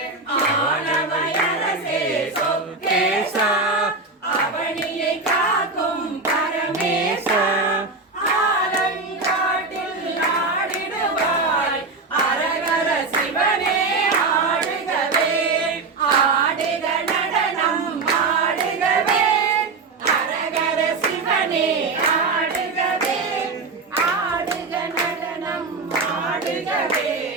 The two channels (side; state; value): left; quieter; 3.8 dB